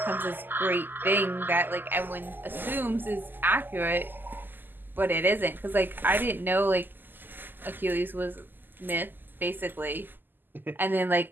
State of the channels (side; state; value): left; late; 0.091 ms